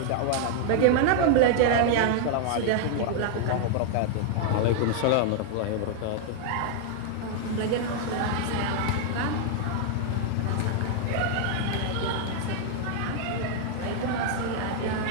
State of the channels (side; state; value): both; different; correlation -0.01